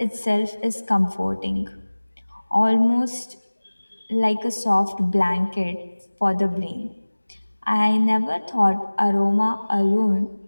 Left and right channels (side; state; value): both; inverted; correlation -1.00